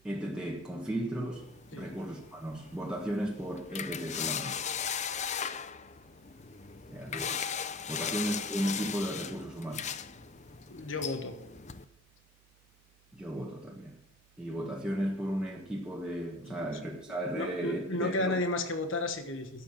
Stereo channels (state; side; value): noise; right; hum, 29 dB below the sound